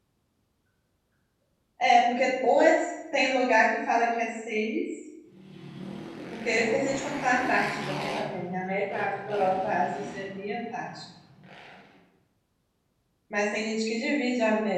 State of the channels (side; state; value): both; identical; correlation 1.00